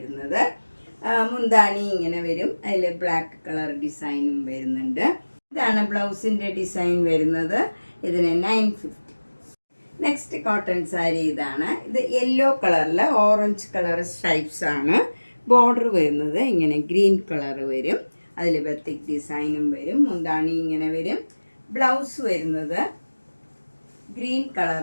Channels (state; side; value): inverted; both; correlation -1.00